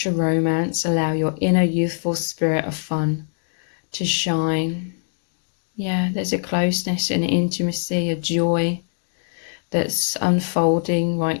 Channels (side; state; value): right; silent; digital silence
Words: romance, allow your inner youthful spirit of fun to shine. Yeah, there's a closeness and intimacy, a joy that's unfolding